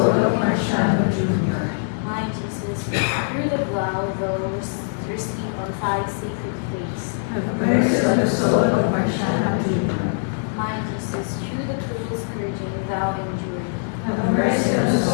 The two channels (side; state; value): right; silent; digital silence